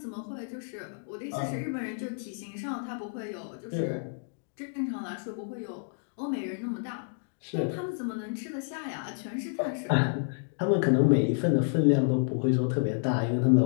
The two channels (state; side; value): silent; right; digital silence